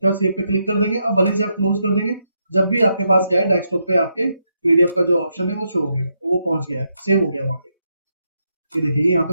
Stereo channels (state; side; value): inverted; both; correlation -0.81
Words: सेव पे क्लिक कर देंगे। अब भले से आप क्लोज कर देंगे, जब भी आपके पास क्या है डेस्कटॉप पे आपके पीडीएफ का जो ऑप्शन है वो शो हो गया, वो पहुंच गया है, सेव हो गया वहां पे। ये देखिए यहाँ पे